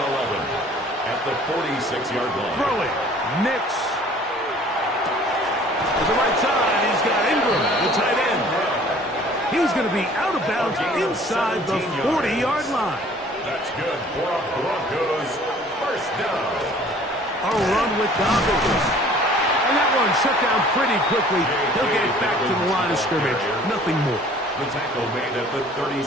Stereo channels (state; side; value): normal; both; correlation 0.52